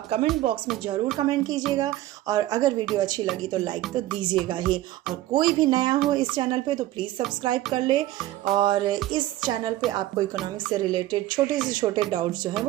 कमेंट बॉक्स में ज़रूर कमेंट कीजिएगा और अगर वीडियो अच्छी लगी तो लाइक तो दीजिएगा ही। और कोई भी नया हो इस चैनल पे तो प्लीज़ सब्सक्राइब कर ले। और इस चैनल पे आपको इकोनॉमिक्स से रिलेटेड छोटे से छोटे डाउट्स जो हैं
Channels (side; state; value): left; quieter; 15.3 dB